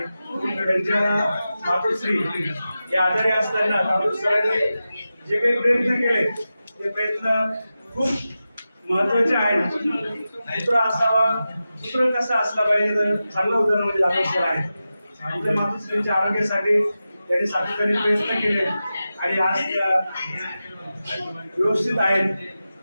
त्यांच्या मातोश्री या आजारी असताना जाधव सरांनी जे काही प्रयत्न केले ते प्रयत्न खूप महत्वाचे आहेत. पुत्र असावा, पुत्र कसा असला पाहिजे तर चांगलं उदाहरण म्हणजे जाधव सर आहे. आपल्या मातोश्रींच्या आरोग्यासाठी त्यांनी सातत्याने प्रयत्न केले आणि आज त्या व्यवस्थित आहेत.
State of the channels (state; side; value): inverted; both; correlation -0.93